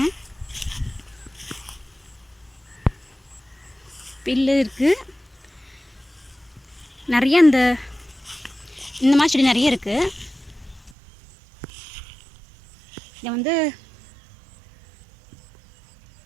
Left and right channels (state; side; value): drops out; left; at 11.0 s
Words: பில்லு இருக்குது, நிறைய இந்த மாதிரி செடி நிறைய இருக்குது. இதை வந்து